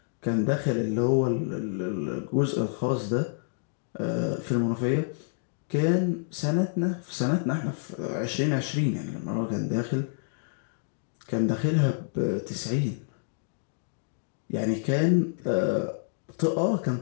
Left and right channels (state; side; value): silent; right; digital silence